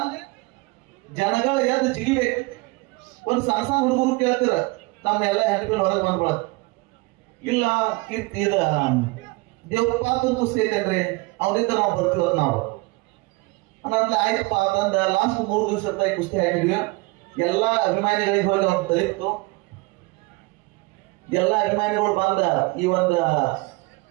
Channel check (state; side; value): quieter; left; 24.6 dB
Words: ಜನಗಳು ಎದ್ದು ಜಿಗಿಬೇಕು. ಒಂದು ಸಣ್ಣ ಹುಡುಗರು ಕೇಳ್ತೀರ, ನಮ್ಮ ಎಲ್ಲ ಹೆಣ್ಗಳು ಹೊರಗೆ ಬಂದ್ಬಿಡ, ಇಲ್ಲ ಇದ ದೇವ್ರ ಪಾತ್ರ ಕುಸ್ತಿ ಐತೇನ್ರಿ, ಅವ್ರಿಂದ ನಾವು ಬರ್ತೀವಿ ನಾವು ಅನ್ನೋದ್ಲೆ ಆಯ್ತಪ್ಪ ಅಂತಂದ ಲಾಸ್ಟ್ 3 ದಿವಸ ಕುಸ್ತಿ ಹಾಕಿದ್ವಿ. ಎಲ್ಲಾ ಅಭಿಮಾನಿಗಳಿಗೆ ಹೋಗಿ ಅವ್ರು ತರಿತ್ತು. ಎಲ್ಲ ಅಭಿಮಾನಿಗಳು ಬಂದ ಈ ಒಂದು